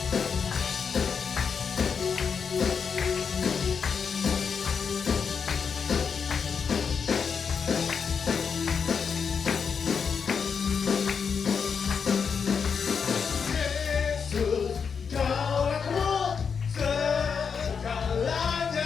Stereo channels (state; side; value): quieter; right; 6.2 dB